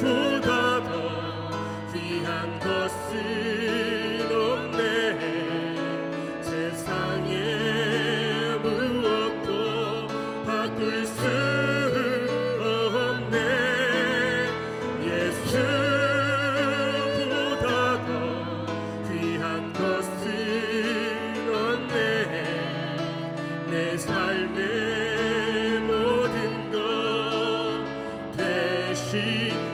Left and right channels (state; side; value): identical; both; correlation 1.00